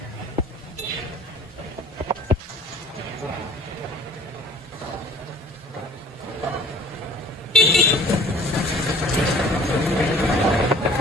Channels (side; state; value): both; normal; correlation 0.51